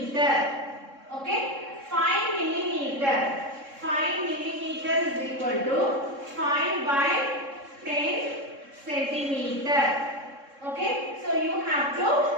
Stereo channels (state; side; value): late; left; 3.7 ms